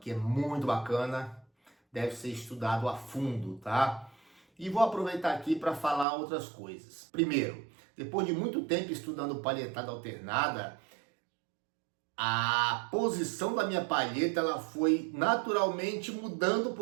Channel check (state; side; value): drops out; left; at 6.1 s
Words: é muito bacana, deve ser estudado a fundo, tá? E vou aproveitar aqui para falar outras coisas. Primeiro, depois de muito tempo estudando palhetada alternada, a posição da minha palheta ela foi naturalmente mudando